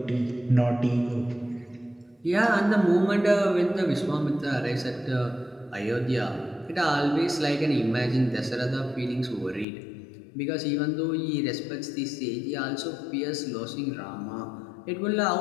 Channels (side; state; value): right; drops out; at 9.7 s